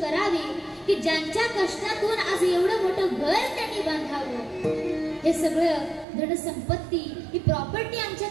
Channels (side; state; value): left; drops out; at 6.1 s